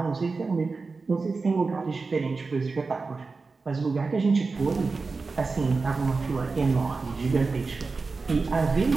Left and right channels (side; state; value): left; quieter; 4.1 dB